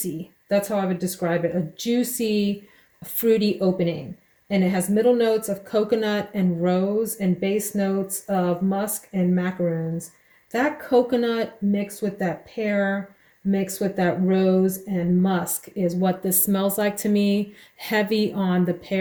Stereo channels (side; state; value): both; identical; correlation 1.00